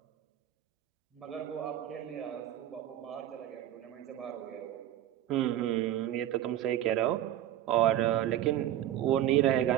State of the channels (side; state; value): left; quieter; 12.4 dB